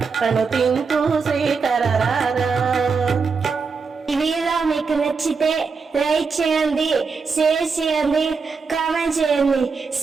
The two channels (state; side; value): quieter; left; 5.0 dB